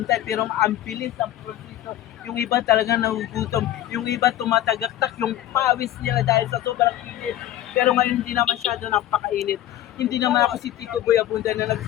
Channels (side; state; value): right; quieter; 13.1 dB